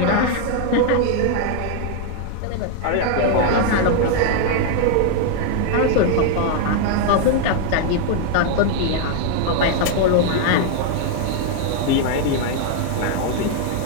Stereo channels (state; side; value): different; both; correlation 0.01